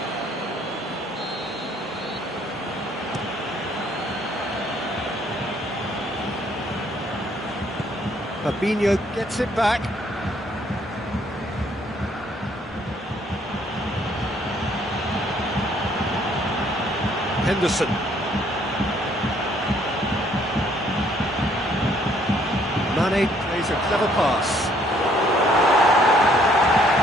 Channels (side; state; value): both; normal; correlation 0.64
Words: Fabinho gets it back. Henderson. Mane plays a clever pass.